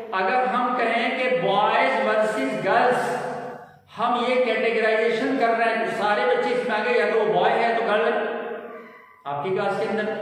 अगर हम कहें कि बॉयज वर्सेस गर्ल्स, हम ये कैटेगराइजेशन कर रहे हैं, तो सारे बच्चे इसमें आ गए, या तो वो बॉय है तो गर्ल है आपकी क्लास के अंदर,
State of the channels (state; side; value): identical; both; correlation 1.00